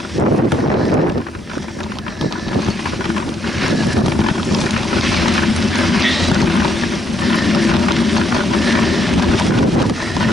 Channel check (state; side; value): normal; both; correlation 0.74